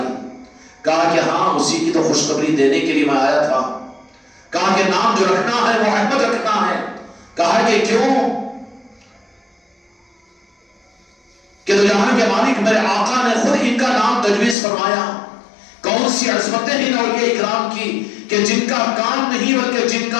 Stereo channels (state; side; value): drops out; right; at 14.6 s